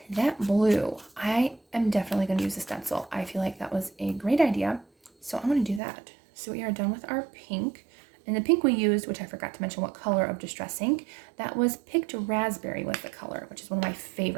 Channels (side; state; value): left; drops out; at 5.8 s